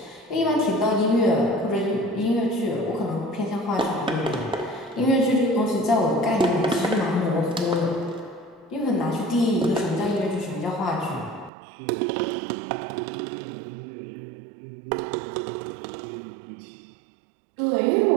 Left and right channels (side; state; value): left; drops out; at 11.5 s